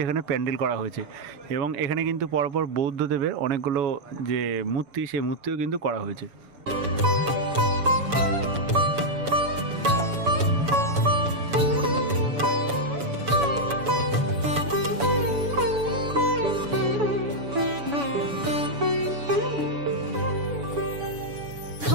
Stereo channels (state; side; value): late; left; 7.0 ms